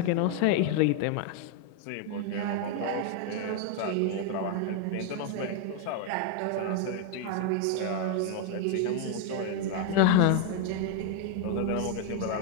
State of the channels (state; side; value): different; both; correlation 0.00